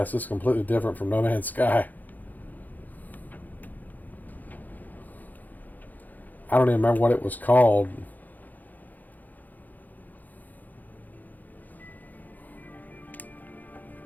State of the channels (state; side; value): late; right; 0.083 ms